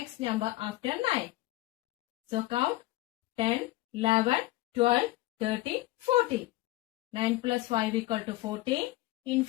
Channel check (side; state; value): right; quieter; 17.7 dB